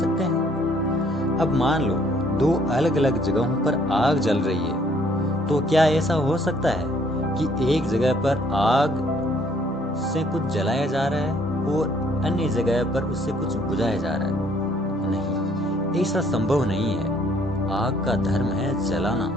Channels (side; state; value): both; normal; correlation 0.63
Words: हैं? अब मान लो दो अलग अलग जगहों पर आग जल रही है, तो क्या ऐसा हो सकता है कि एक जगह पर आग से कुछ जलाया जा रहा है और अन्य जगह पर उससे कुछ बुझाया जा रहा है। नहीं, ऐसा संभव नहीं है। आग का धर्म है जलाना,